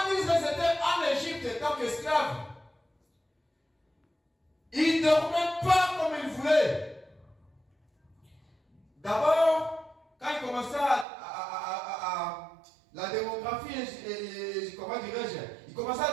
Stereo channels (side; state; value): left; drops out; at 11.1 s